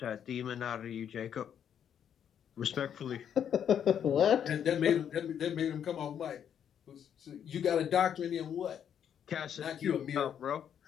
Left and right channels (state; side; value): quieter; right; 8.8 dB